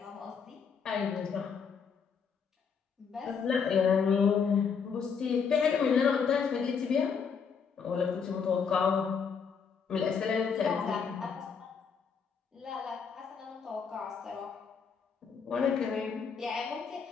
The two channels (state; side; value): quieter; right; 6.2 dB